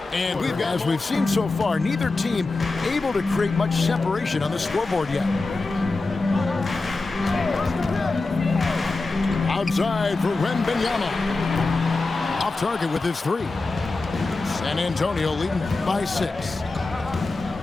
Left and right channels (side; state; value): right; quieter; 3.5 dB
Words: And as we've seen so far, neither team able to create much separation on the scoreboard yet. Outside for Wembanyama. Off target with his three. San Antonio leading by 6.